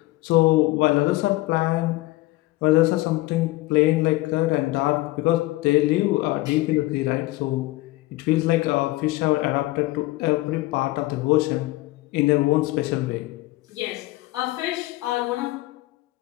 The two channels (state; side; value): quieter; right; 19.6 dB